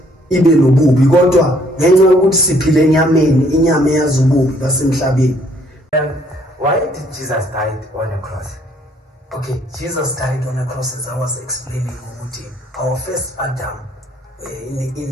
ibe lobubi, kodwa ngenxa yokuthi siphile enyameni, inyama eyazi ububi basemhlabeni. Why did Jesus die on a cross? Okay, Jesus died on a cross, as I was explaining. Our first Adam,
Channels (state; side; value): normal; both; correlation 0.64